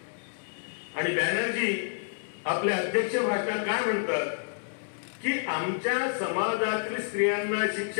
आणि बॅनर्जी आपल्या अध्यक्ष भाषणात काय म्हणतात की आमच्या समाजातील स्त्रियांना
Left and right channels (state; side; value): silent; right; 59 dB below the other